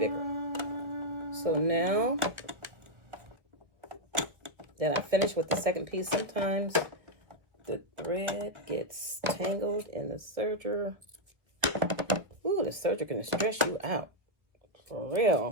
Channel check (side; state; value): left; late; 1.4 ms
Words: So now that I finished with the second piece, sometimes the thread gets tangled in the serger. Ooh, the serger can stress you out. For